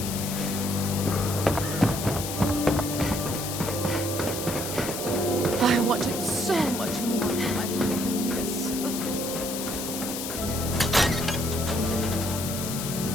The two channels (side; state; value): left; noise; hiss, 5 dB below the sound